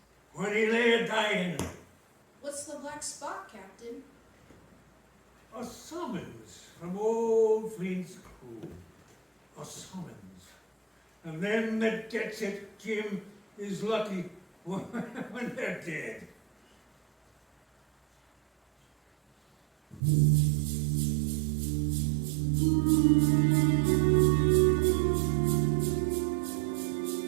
when he lay a-dying. What's the black spot, Captain? A summons from old Flint's crew. A summons. And them that gets it, Jim, is lucky when they're dead.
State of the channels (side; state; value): left; drops out; at 20.0 s